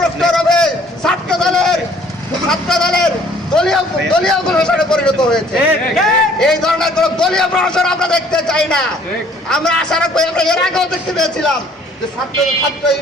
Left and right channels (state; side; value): normal; both; correlation 0.58